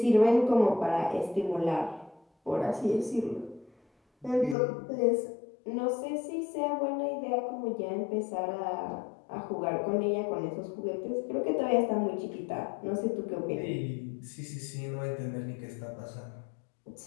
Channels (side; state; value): right; drops out; at 4.5 s